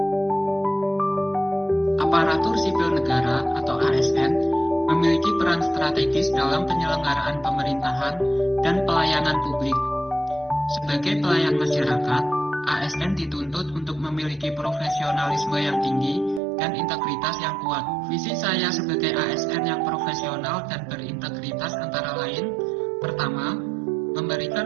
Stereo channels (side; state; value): left; drops out; at 16.4 s